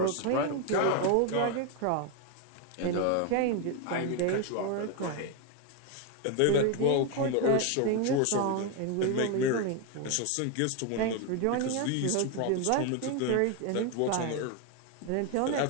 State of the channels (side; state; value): both; different; correlation 0.01